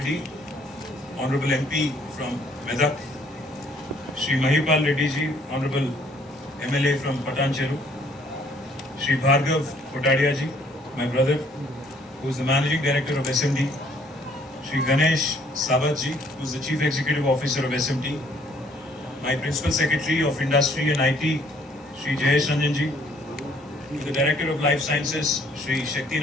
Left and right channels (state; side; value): normal; both; correlation 0.62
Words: honourable MP from Medak, Shri Mahipal Reddy ji honourable MLA from Patancheru, Shri Bhargav Kotadia ji, my brother, who is the managing director of SMT, Shri Ganesh Sabat ji, who is the chief executive officer of SMT, my principal secretary of industry and IT, Shri Jayesh Ranjan ji, to the director of life sciences, Shri